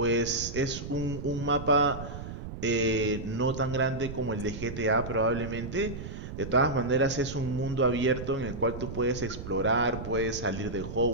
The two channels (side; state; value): right; noise; rumble, 9 dB below the sound